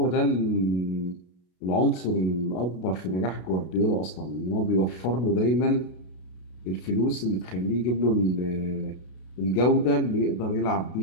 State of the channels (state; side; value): late; right; 32 ms